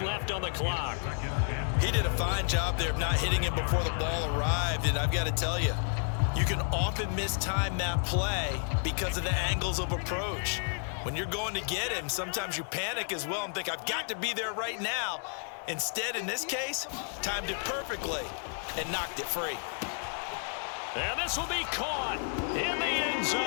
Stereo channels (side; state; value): right; silent; 55 dB below the other